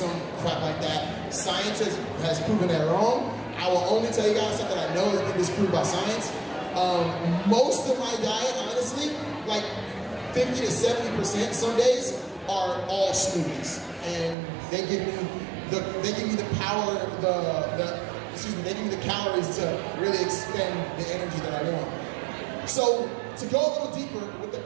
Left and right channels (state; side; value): drops out; left; at 14.4 s